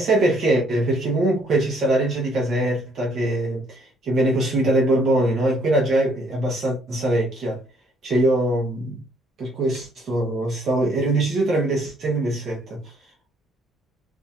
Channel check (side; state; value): both; normal; correlation 0.66